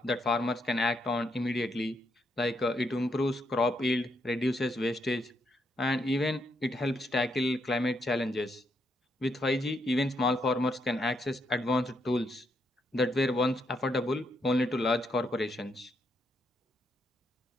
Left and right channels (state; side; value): normal; both; correlation 0.78